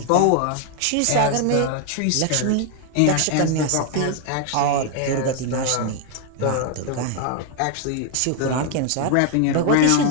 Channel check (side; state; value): both; different; correlation 0.00